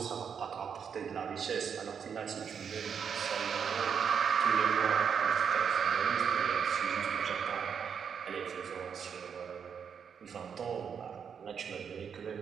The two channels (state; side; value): quieter; left; 7.1 dB